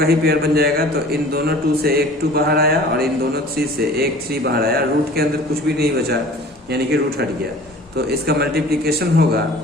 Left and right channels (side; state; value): both; normal; correlation 0.45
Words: ही पेयर बन जाएगा। तो इन दोनों 2 से एक 2 बाहर आया और इन दोनों 3 से एक 3 बाहर आया। रूट के अंदर कुछ भी नहीं बचा, यानी कि रूट हट गया। तो इसका मल्टीप्लीकेशन होगा